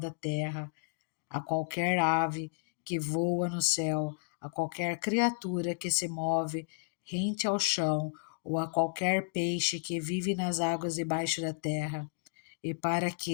terra, a qualquer ave que voa no céu, a qualquer criatura que se move rente ao chão, ou a qualquer peixe que vive nas águas debaixo da terra, e para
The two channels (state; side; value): silent; right; digital silence